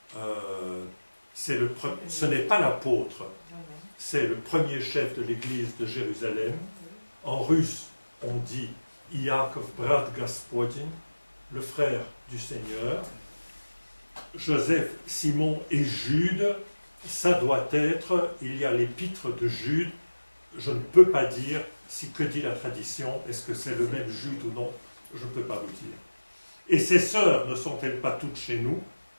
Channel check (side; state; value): both; inverted; correlation -1.00